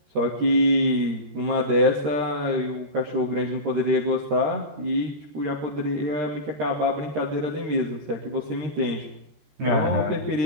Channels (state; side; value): late; left; 13 ms